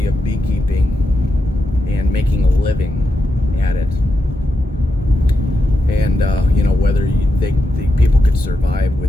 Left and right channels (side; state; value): both; normal; correlation 0.87